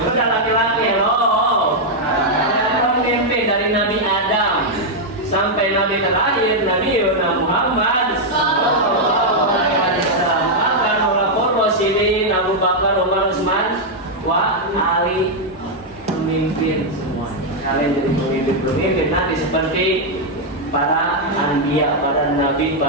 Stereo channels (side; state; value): both; normal; correlation -0.02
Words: udah laki-laki loh, pemimpin dari Nabi Adam sampai Nabi terakhir Nabi Muhammad sallallahu alaihi wasallam akan melakukan wasilin Abu Bakar, Umar, Utsman, wa Ali pemimpin semua. Kalian jadi pemimpin nanti seperti para anbiya, para nabi,